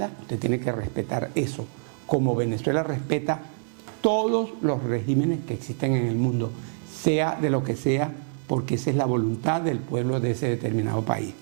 usted tiene que respetar eso, como Venezuela respeta todos los regímenes que existen en el mundo, sea de lo que sea, porque esa es la voluntad del pueblo de ese determinado país.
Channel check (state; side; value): silent; left; digital silence